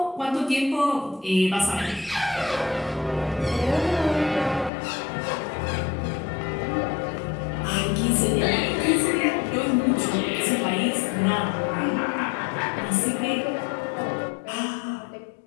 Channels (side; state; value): right; drops out; at 4.7 s